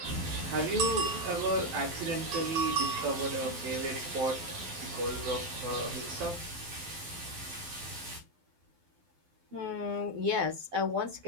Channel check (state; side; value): late; left; 12 ms